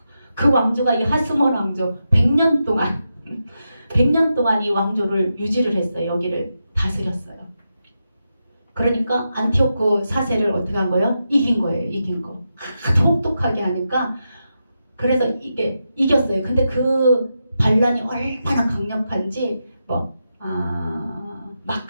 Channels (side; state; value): both; inverted; correlation -0.87